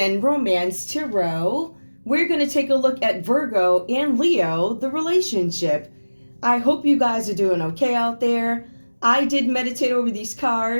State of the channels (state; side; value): inverted; both; correlation -1.00